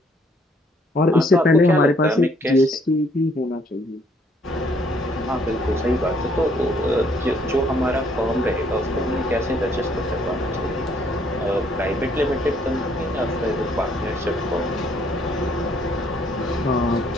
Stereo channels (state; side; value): normal; both; correlation 0.66